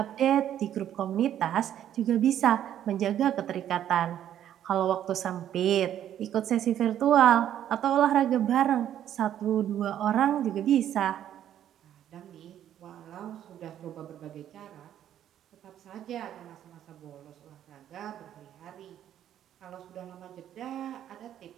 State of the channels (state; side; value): quieter; left; 10.8 dB